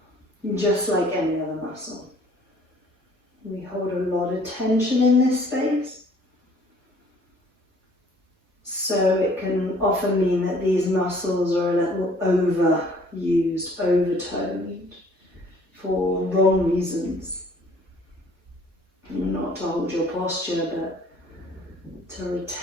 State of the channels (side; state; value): both; normal; correlation 0.57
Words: just like any other muscle. We hold a lot of tension in this space. So it can often mean that these muscles are a little overused, overtoned for wrong reasons. Not to hold your posture, but to